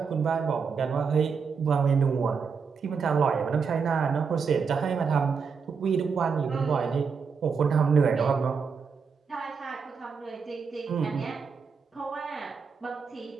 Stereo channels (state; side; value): quieter; left; 5.7 dB